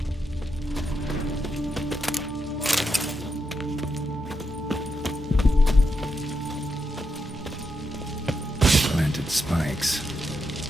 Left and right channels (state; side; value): normal; both; correlation 0.83